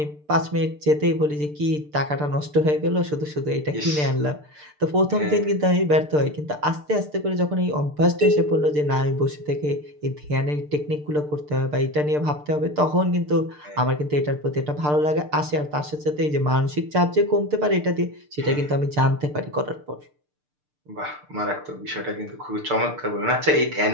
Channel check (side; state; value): left; late; 6.7 ms